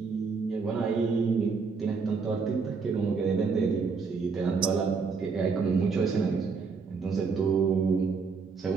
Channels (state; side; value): quieter; left; 5.0 dB